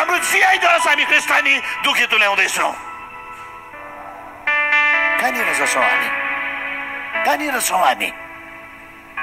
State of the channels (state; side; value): identical; both; correlation 1.00